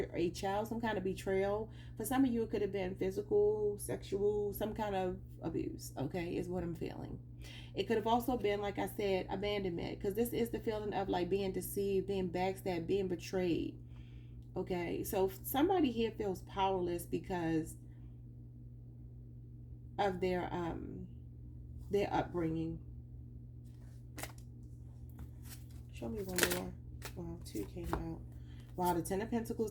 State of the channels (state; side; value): identical; both; correlation 1.00